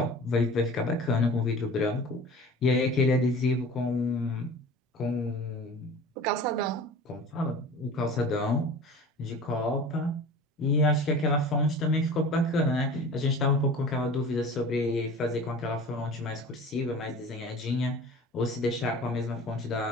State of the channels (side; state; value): both; normal; correlation 0.40